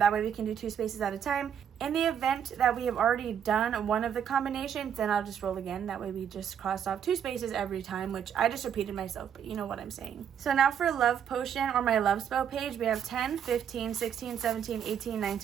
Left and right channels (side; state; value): left; quieter; 8.5 dB